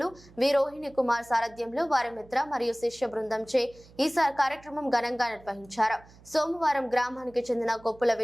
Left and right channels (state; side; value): noise; right; hum, 24 dB below the sound